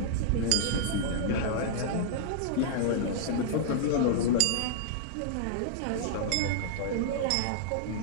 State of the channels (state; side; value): different; both; correlation -0.01